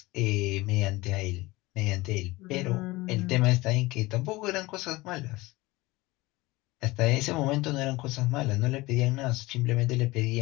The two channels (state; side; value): quieter; right; 20.8 dB